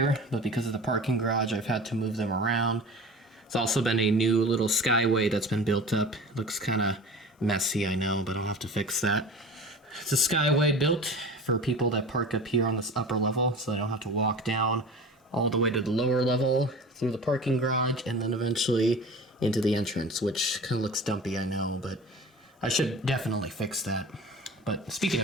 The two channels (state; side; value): normal; both; correlation 0.37